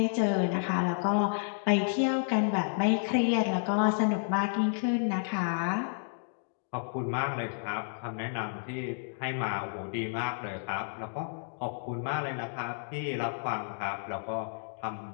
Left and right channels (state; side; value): silent; right; digital silence